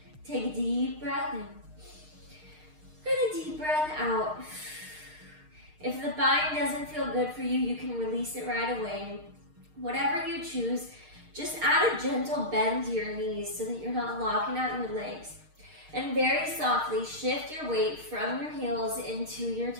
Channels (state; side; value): late; left; 6.5 ms